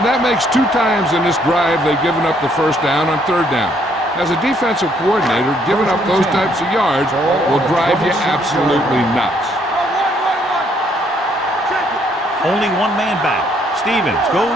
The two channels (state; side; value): normal; both; correlation 0.68